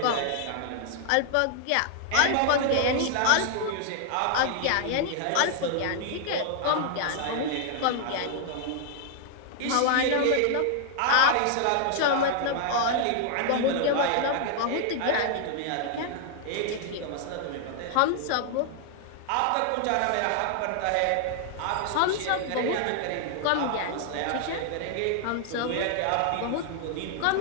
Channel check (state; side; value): different; both; correlation 0.00